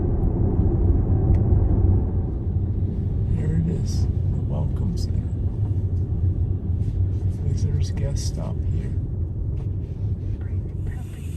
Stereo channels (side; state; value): both; identical; correlation 1.00